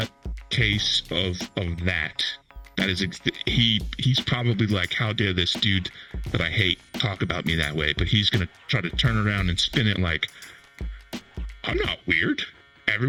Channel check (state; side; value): identical; both; correlation 1.00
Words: case of that. That is, he's probably like, how dare this dude that I hate talk about me that way? But he's going to try to turn around and spin it like, I'm not weird.